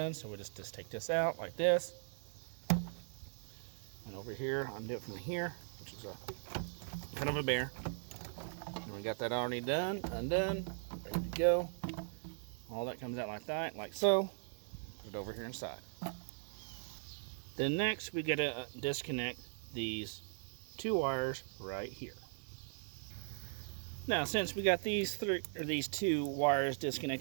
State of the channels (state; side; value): silent; left; digital silence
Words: So we'll just take this out like this, and over here undo it from here, which is a kind of a bear. And we got that already undone, ready to go. All that comes out like that, like so. Put it over here inside. Then next, we got to disconnect these two wires right here. Now, since we got these two wires